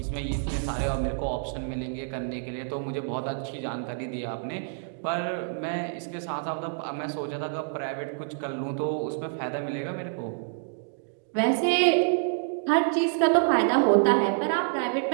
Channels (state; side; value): silent; left; digital silence